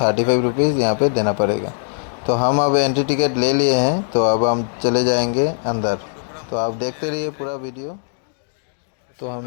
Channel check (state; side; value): silent; right; digital silence